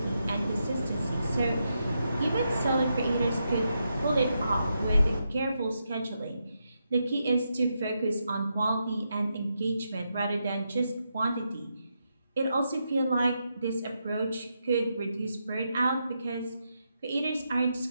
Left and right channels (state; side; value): inverted; both; correlation -0.84